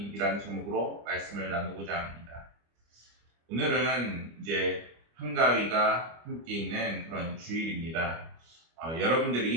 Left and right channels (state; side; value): late; left; 25 ms